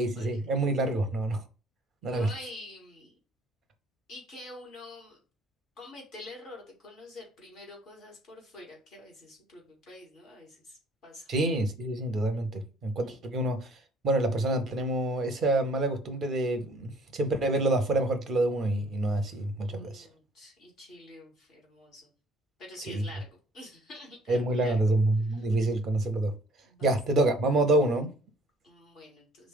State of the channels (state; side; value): normal; both; correlation 0.57